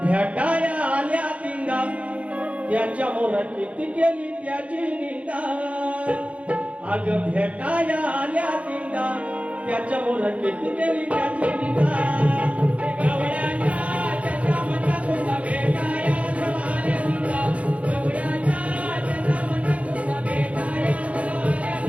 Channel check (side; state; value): left; late; 0.064 ms